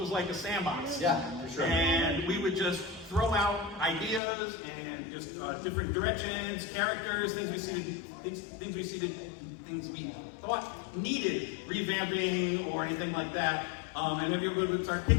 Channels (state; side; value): drops out; right; at 4.2 s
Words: like a sandbox. Yeah, for sure. And we would just throw out ideas and just different directions, characters, things we thought needed revamping or anything like that. And everyone would start